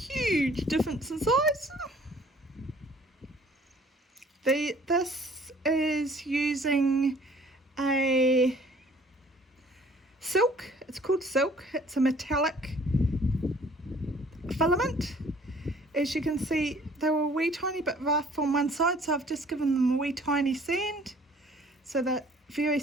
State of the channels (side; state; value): both; normal; correlation 0.55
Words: difference in size. This is using a silk. It's called silk. It's a metallic filament. As you can see, they were a wee tiny bit rough on one side, so I've just given them a wee tiny sand so they're very